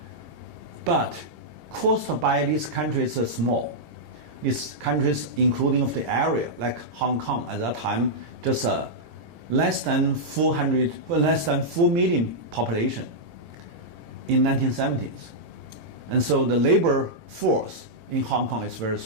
But caused by these countries are small. These countries, including of the area, like Hong Kong at that time, just less than 4 million population in 1970s. And so the labor force in Hong Kong is very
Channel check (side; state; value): left; late; 18 ms